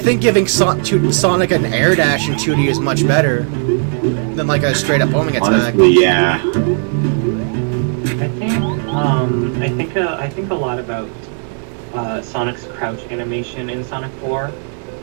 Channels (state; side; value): silent; left; 55 dB below the other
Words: giving Sonic an air dash in 2D is much better than like a straight up homing attack. Honestly, yeah. I think a lot about Sonic's crouch animation in Sonic 4.